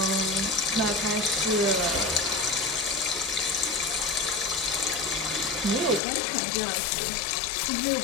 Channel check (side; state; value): right; drops out; at 6.0 s